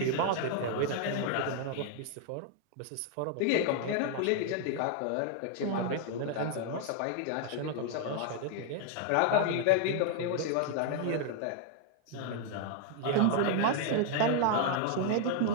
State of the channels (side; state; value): both; different; correlation 0.00